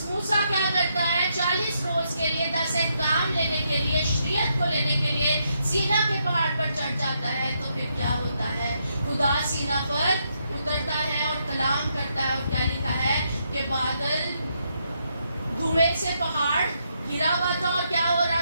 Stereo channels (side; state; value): both; inverted; correlation -0.78